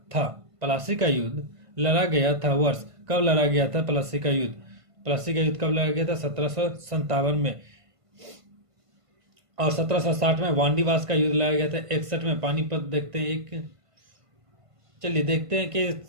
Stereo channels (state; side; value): late; left; 1.5 ms